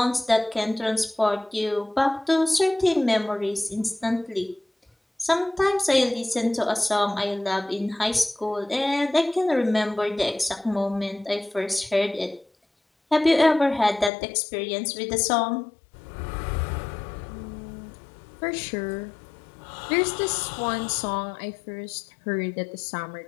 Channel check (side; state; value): right; drops out; at 14.1 s